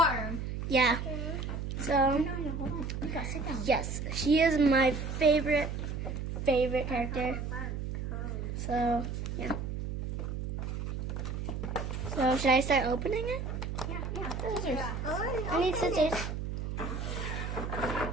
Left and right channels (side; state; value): right; noise; hum, 4 dB below the sound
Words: Yeah. So No, hold on. Mika, sit down. yes, she is my favorite character. So yeah. So should I start opening it? Yeah. Scissors. I need scissors.